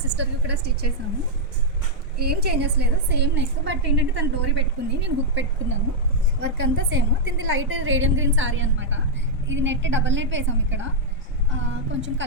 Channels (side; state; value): both; normal; correlation -0.04